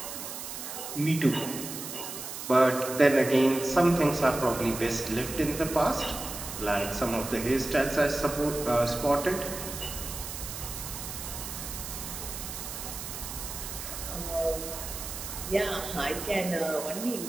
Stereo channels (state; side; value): noise; right; hiss, 8 dB below the sound